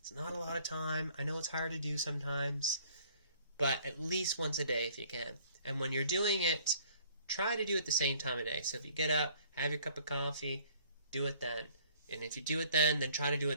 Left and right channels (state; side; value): inverted; both; correlation -0.57